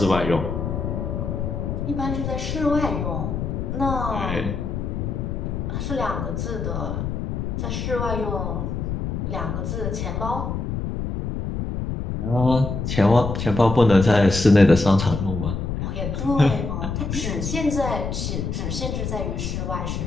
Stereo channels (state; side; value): noise; left; rumble, 3 dB below the sound